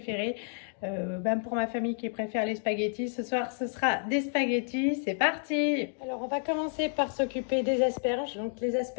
Pour ma famille qui préfère les spaghettis, ce soir ce sera des spaghettis. C'est parti! Alors on va commencer par s'occuper des asperges. Donc les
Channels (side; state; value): right; silent; 58 dB below the other